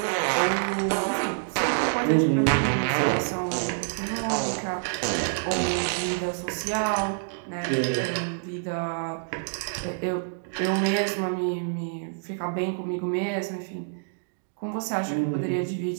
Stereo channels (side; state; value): left; silent; digital silence